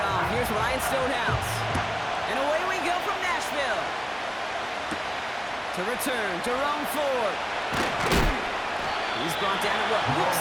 here's Ryan Stonehouse. And away we go from Nashville. To return, Jerome Ford. He's brought down at what looks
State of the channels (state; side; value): identical; both; correlation 1.00